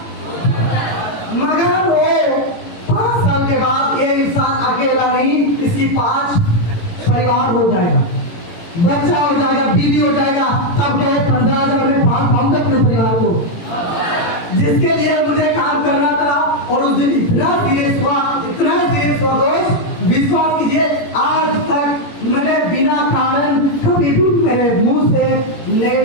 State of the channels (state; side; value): late; right; 18 ms